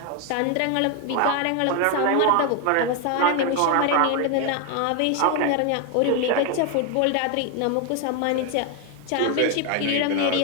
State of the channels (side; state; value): both; different; correlation 0.01